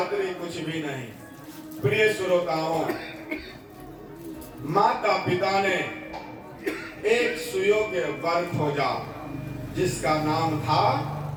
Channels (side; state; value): both; identical; correlation 1.00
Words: कुछ भी नहीं। प्रिय श्रोताओं, माता पिता ने एक सुयोग्य वर खोजा जिसका नाम था